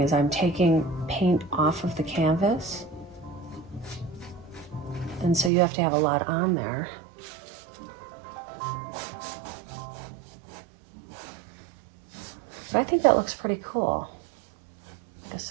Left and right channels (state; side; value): drops out; left; at 5.5 s